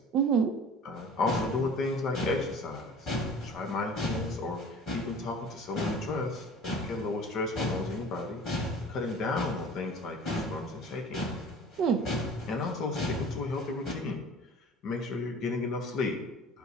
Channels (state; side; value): normal; both; correlation 0.43